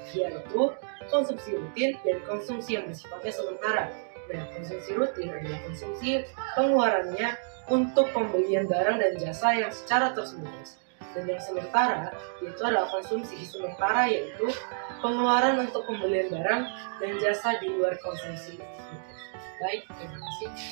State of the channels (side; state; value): left; silent; digital silence